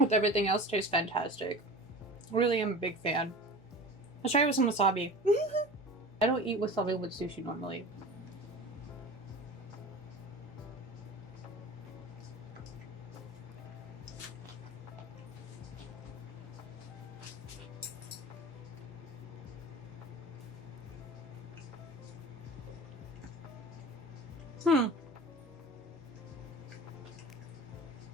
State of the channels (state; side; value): noise; right; hum, 25 dB below the sound